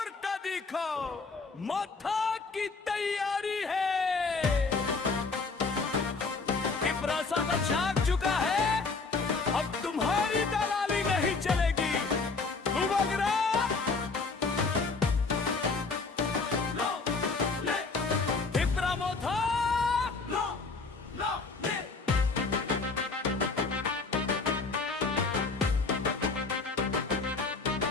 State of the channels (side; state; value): right; quieter; 4.2 dB